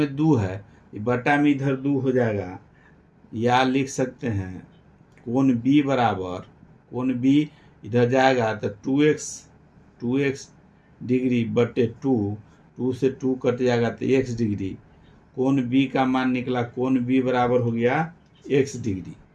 2 है, ये बटा में इधर 2 हो जाएगा, या लिख सकते हैं कोण b बराबर, कोण b इधर जाएगा तो 2x डिग्री बटे 2 से 2 कट जाएगा तो x डिग्री, कोण b का मान निकला, कोण b बराबर हो गया x डिग्री,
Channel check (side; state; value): both; identical; correlation 1.00